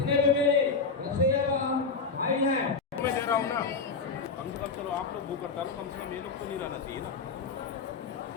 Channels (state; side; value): quieter; right; 4.8 dB